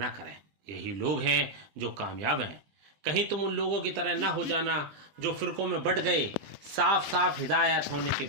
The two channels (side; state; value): left; late; 20 ms